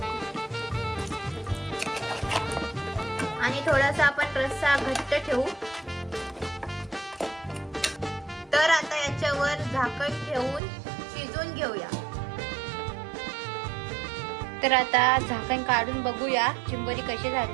आणि थोडासा आपण रस्सा घट्ट ठेवू. तर आता याच्यावर झाकण ठेवून शिजवून घेऊया. तर आता झाकण काढून बघूया चिंबोरी कशी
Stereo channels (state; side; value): drops out; left; at 10.6 s